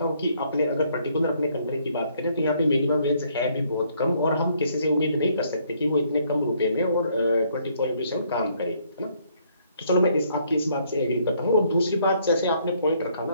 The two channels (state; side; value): inverted; both; correlation -0.67